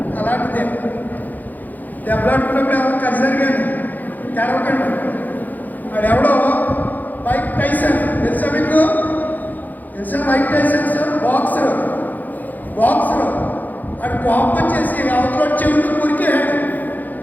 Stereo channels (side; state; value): right; late; 0.083 ms